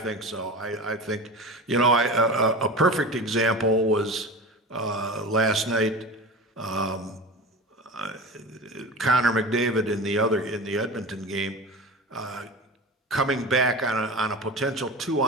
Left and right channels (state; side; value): normal; both; correlation 0.31